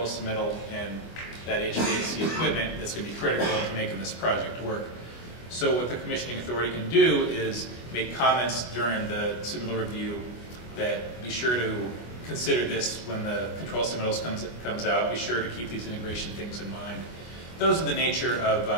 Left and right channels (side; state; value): right; late; 24 ms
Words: submittal and that HVAC equipment that's going to be critical to making this project work. So what the commissioning authority can do is make comments during the submittal review that be sure to consider this when the control submittals comes out. Be sure to keep these integration things in mind. Those are the nature of